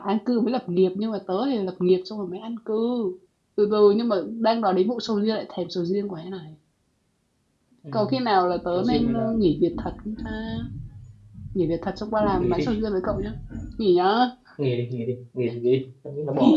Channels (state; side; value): identical; both; correlation 1.00